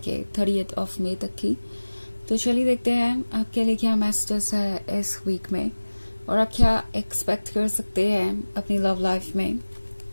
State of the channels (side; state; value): both; inverted; correlation -1.00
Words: 30 मई तक की। तो चलिए देखते हैं आपके लिए क्या मैसेजेस है इस वीक में और आप क्या एक्सपेक्ट कर सकते हैं अपनी लव लाइफ में।